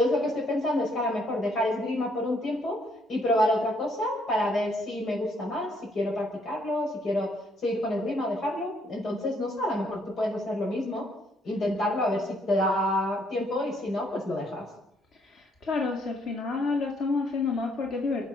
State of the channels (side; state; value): both; normal; correlation 0.69